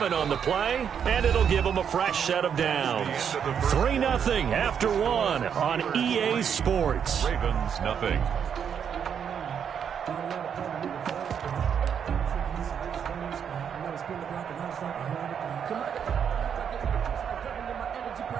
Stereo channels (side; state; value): left; quieter; 7.8 dB